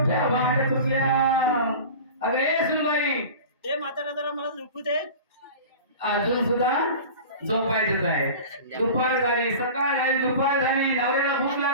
म्हातारा जरा मला झोपू दे. अजून सुद्धा झोपायचंच आहे. दुपार झाली, सकाळ झाली, दुपार झाली, नवऱ्याला भूक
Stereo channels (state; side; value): inverted; both; correlation -0.36